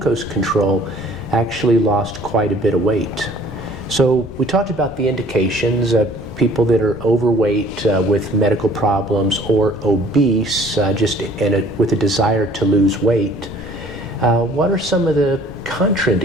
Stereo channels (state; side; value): noise; left; rumble, 16 dB below the sound